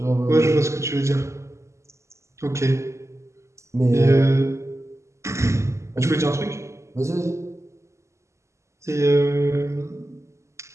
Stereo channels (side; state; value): left; late; 0.14 ms